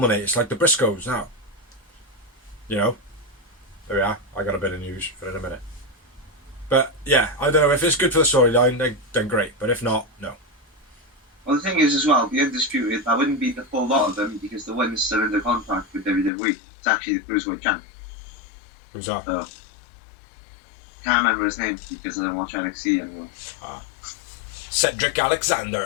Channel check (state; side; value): drops out; right; at 16.3 s